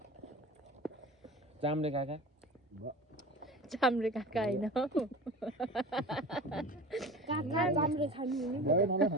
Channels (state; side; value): normal; both; correlation 0.35